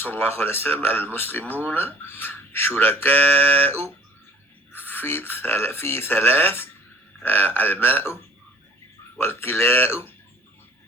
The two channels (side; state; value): both; normal; correlation 0.52